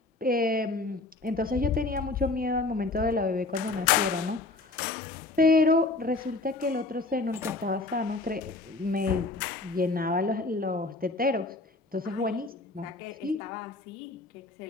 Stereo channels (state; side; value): quieter; right; 3.3 dB